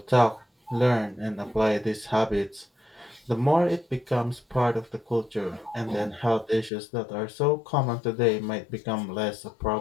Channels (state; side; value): drops out; right; at 6.7 s